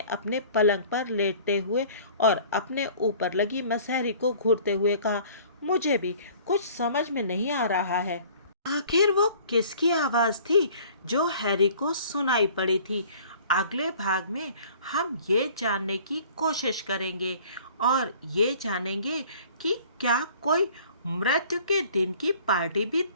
अपने पलंग पर लेटते हुए और अपने ऊपर लगी मसहरी को घूरते हुए कहा। मुझे भी कुछ समझ में नहीं आ रहा है। आखिर वो किसकी आवाज़ थी जो हैरी को सुनाई पड़ी थी? अगले भाग में हम ये जानने की कोशिश करेंगे और ये जानेंगे कि क्या कोई मृत्यु के दिन की पार्टी भी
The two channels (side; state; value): both; inverted; correlation -0.50